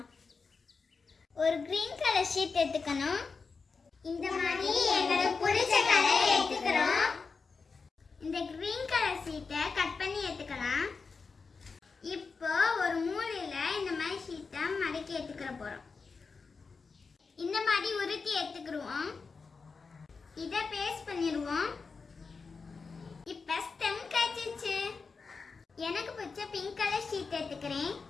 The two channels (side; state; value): right; quieter; 4.7 dB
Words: ஒரு கிரீன் கலர் ஷீட் எடுத்துக்கணும். இந்த மாதிரி எங்களுக்கு பிடிச்ச கலர் எடுத்துக்கிறோம். இந்த கிரீன் கலர் ஷீட்டை கட் பண்ணி எடுத்துக்கலாம். இப்போ ஒரு மூலையில இந்த மாதிரி ஷீட்டை மடக்கி எடுத்துக்கிற போறோம். இந்த மாதிரி உருட்டி எடுத்துக்கிடுவோம். இதை பேஸ்ட் பண்ணிடுவோம். இப்போ ஸ்டெம் காய்ச்சிச்சு. எனக்கு பிடிச்ச பிங்க் கலர் ஷீட் எடுத்துக்கிறேன்.